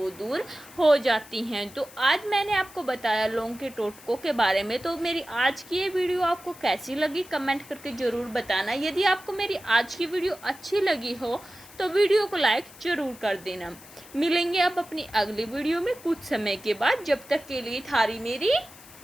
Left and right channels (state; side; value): noise; left; hiss, 20 dB below the sound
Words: दूर हो जाती हैं। तो आज मैंने आपको बताया लौंग के टोटकों के बारे में। तो मेरी आज की ये वीडियो आपको कैसी लगी कमेंट करके ज़रूर बताना। यदि आपको मेरी आज की वीडियो अच्छी लगी हो तो वीडियो को लाइक ज़रूर कर देना। मिलेंगे अब अपनी अगली वीडियो में कुछ समय के बाद। जब तक के लिए थारी मेरी